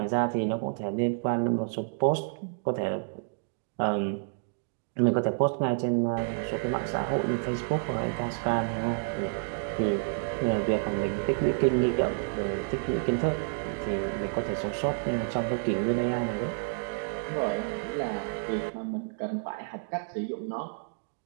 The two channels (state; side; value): silent; left; digital silence